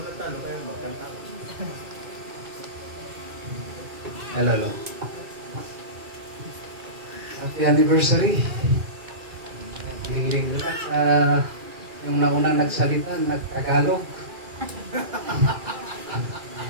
na talo kayo, magkanta. Hello. Happy anniversary. Hiling lang sa yung naunang nagsalita, nagtagalog.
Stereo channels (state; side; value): late; left; 2.4 ms